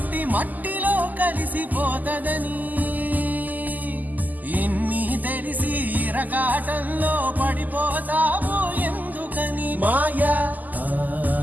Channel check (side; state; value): left; late; 0.082 ms